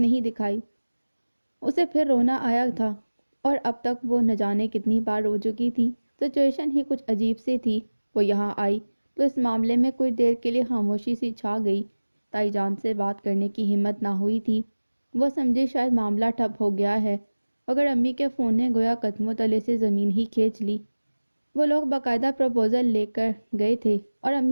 دکھائی۔ اسے پھر رونا آیا تھا اور اب تک وہ نہ جانے کتنی بار رو چکی تھی۔ سچویشن ہی کچھ عجیب سی تھی۔ وہ یہاں آئی تو اس معاملے میں کچھ دیر کے لیے خاموشی سی چھا گئی۔ تائی جان سے بات کرنے کی ہمت نہ ہوئی تھی۔ وہ سمجھی شاید معاملہ ٹھپ ہو گیا ہے، مگر امی کے فون نے گویا قدموں تلے سے زمین ہی کھینچ لی۔ وہ لوگ باقاعدہ پروپوزل لے کر گئے تھے اور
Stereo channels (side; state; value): both; inverted; correlation -1.00